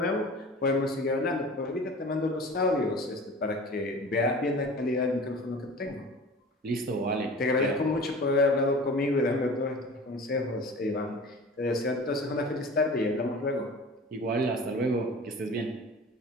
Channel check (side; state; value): both; normal; correlation 0.39